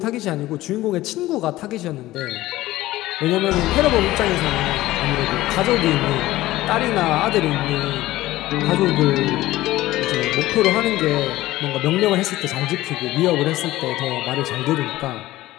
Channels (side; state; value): right; quieter; 16.6 dB